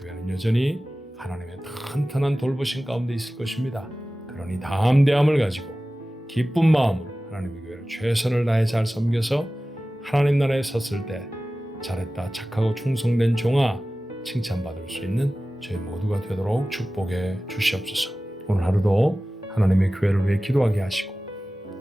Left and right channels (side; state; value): both; normal; correlation 0.96